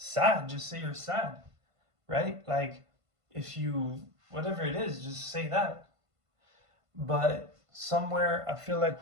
just say you're sad, right? Like, if you, whatever it is, just say that. But somewhere I feel like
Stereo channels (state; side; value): late; left; 1.5 ms